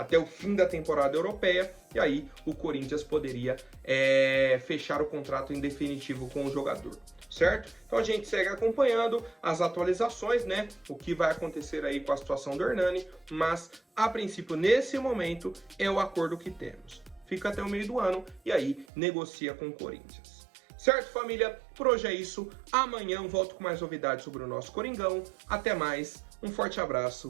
o fim da temporada europeia, e aí o Corinthians poderia fechar o contrato em definitivo com o jogador, certo? Então a gente segue acompanhando as atualizações, né, o que vai acontecer aí com a situação do Hernani, mas a princípio, nesse momento, é o acordo que temos. Fica até o meio do ano e aí negocia com o Corinthians. Certo, família? Por hoje é isso. Amanhã eu volto com mais novidades sobre o nosso Coringão. Até mais, um forte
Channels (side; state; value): left; drops out; at 18.9 s